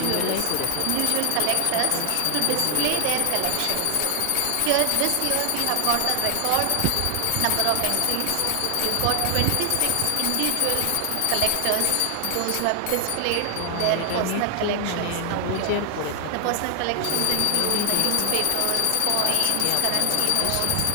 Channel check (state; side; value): different; both; correlation 0.00